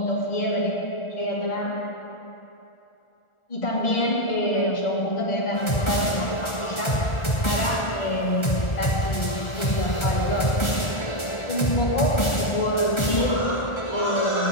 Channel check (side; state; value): right; late; 1.4 ms